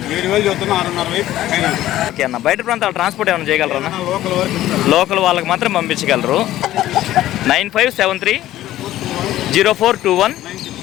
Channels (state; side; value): quieter; right; 14.1 dB